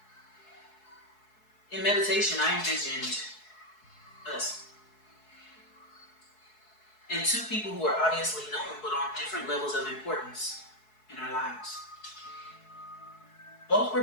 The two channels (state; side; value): late; right; 4.7 ms